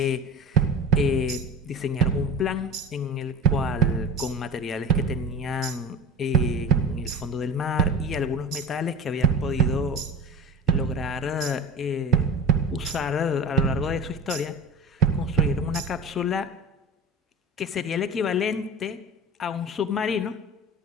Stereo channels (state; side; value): normal; both; correlation 0.32